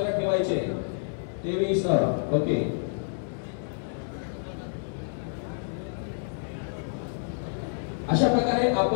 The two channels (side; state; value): right; silent; digital silence